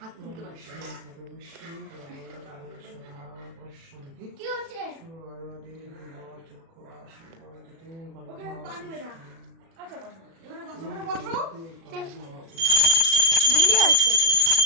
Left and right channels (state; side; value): late; left; 36 ms